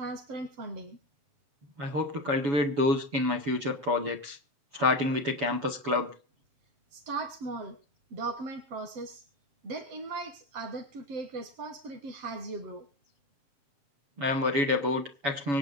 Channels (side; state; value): left; late; 7.1 ms